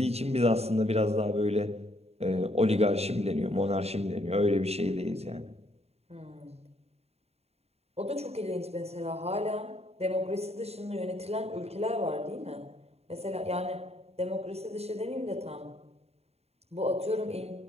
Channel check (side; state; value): left; late; 0.30 ms